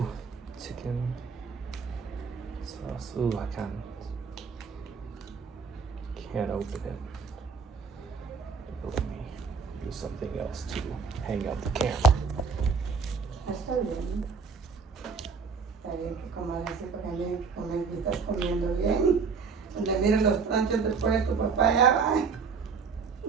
chicken sauce. I can't open it. Let me use something else to hang out the camera. Está bien. Está bien que comas así porque bien que comes y estás comiendo bien. Donde miren los tranchos después de tu papá ya va.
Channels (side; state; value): left; quieter; 5.3 dB